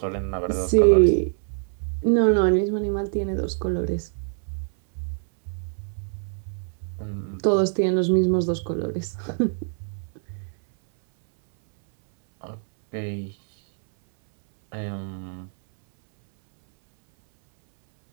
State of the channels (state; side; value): silent; left; 62 dB below the other